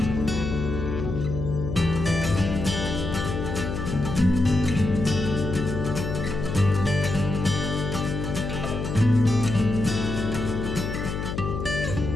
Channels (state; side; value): noise; left; hum, 4 dB below the sound